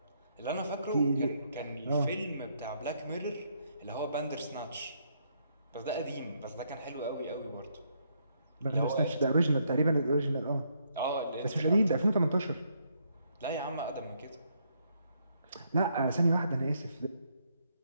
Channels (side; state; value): both; inverted; correlation -0.74